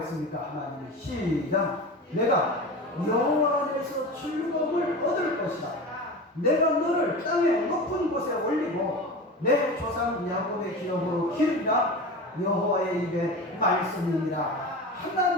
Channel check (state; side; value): normal; both; correlation 0.29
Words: 하나님이 시작. 내가 여호와 안에서 즐거움을 얻을 것이다. 내가 너를 땅의 높은 곳에 올리고 내 조상 야곱의 기업으로 기르리라. 여호와의 입에 말씀이니라.